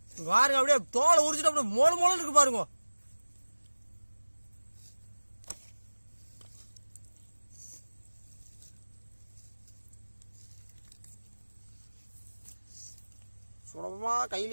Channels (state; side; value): inverted; both; correlation -1.00